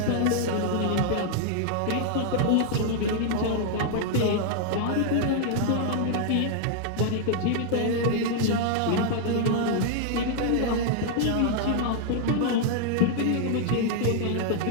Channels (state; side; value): different; both; correlation 0.00